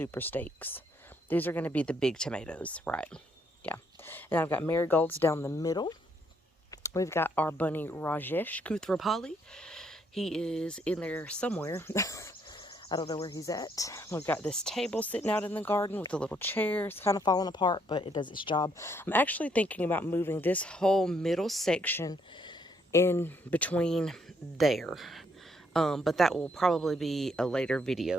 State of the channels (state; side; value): normal; both; correlation 0.71